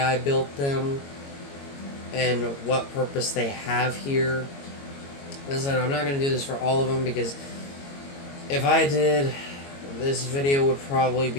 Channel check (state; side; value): late; right; 22 ms